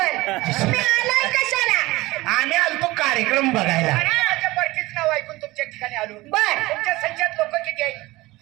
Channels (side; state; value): left; quieter; 20.1 dB